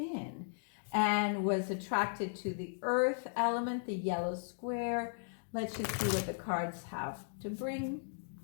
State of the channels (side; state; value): right; silent; digital silence